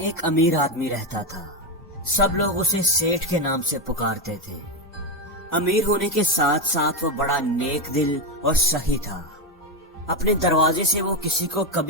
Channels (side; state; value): both; normal; correlation 0.10